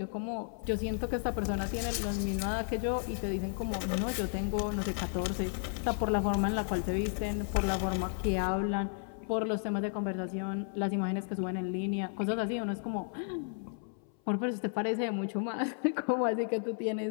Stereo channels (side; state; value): right; silent; 56 dB below the other